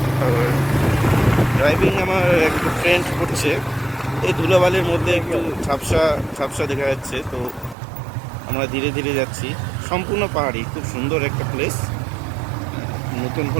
ড্রাইভিং আমার একটু ফ্রেন্ড করছে, এই ধুলাবালির মধ্যে একটু ঝাপসা ঝাপসা দেখা যাচ্ছে। তো আমরা ধীরে ধীরে যাচ্ছি, সম্পূর্ণ পাহাড়ি, খুব সুন্দর একটা প্লেস। নতুন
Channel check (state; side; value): drops out; left; at 7.8 s